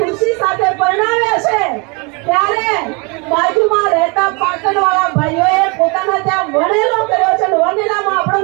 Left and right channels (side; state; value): left; quieter; 30.8 dB